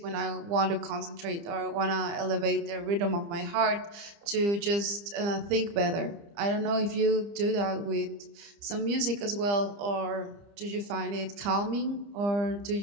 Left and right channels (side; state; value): left; late; 30 ms